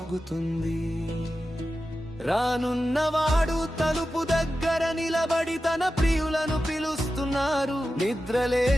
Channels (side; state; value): both; normal; correlation 0.92